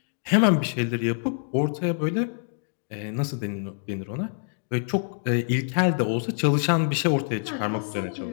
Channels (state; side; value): silent; right; digital silence